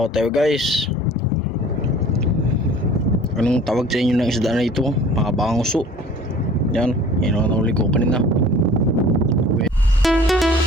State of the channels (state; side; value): normal; both; correlation 0.47